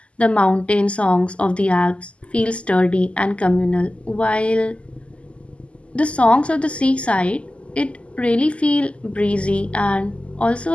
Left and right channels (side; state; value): right; late; 0.058 ms